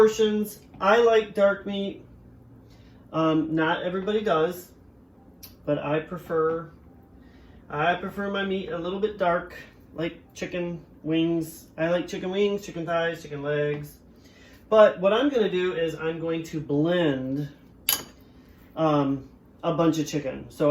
I like dark meat. Not everybody does, but I prefer my meat a little bit dark, like chicken wings. I like chicken wings, chicken thighs, chicken legs. But what I'm gonna do is I'm going to blend a bunch of chicken.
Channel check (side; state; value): both; identical; correlation 1.00